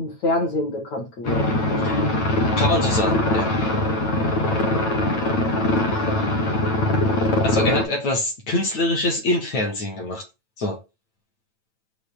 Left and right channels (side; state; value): right; late; 9.0 ms